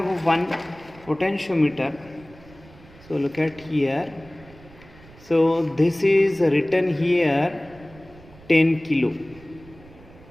one potentiometer, so look at here. So this is written here 10 kilo.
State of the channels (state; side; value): noise; right; rumble, 23 dB below the sound